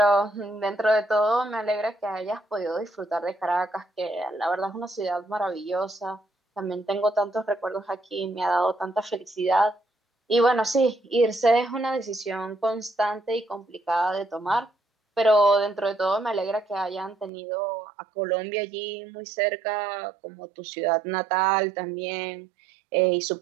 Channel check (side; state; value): left; drops out; at 17.3 s